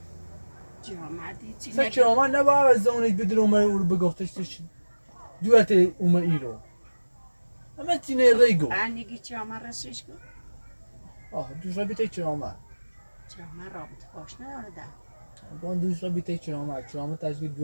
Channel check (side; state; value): both; inverted; correlation -1.00